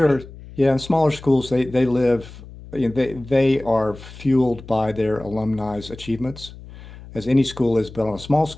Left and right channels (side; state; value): left; noise; hum, 17 dB below the sound